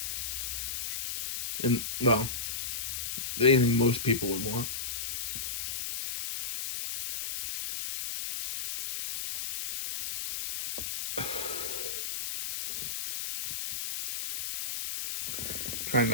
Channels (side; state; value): left; noise; hiss, 4 dB below the sound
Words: And, well, anything most people would want. Trying